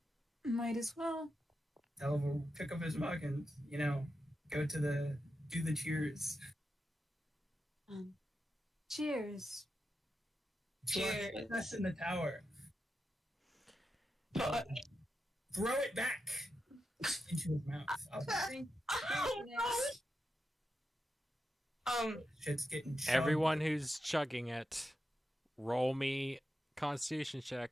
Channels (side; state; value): both; normal; correlation 0.88